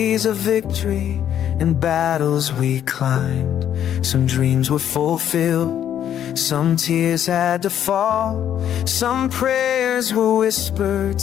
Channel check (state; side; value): quieter; right; 10.1 dB